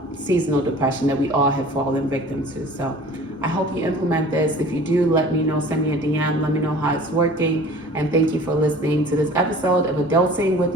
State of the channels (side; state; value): both; normal; correlation 0.45